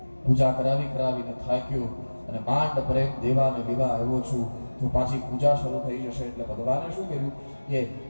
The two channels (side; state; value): both; inverted; correlation -1.00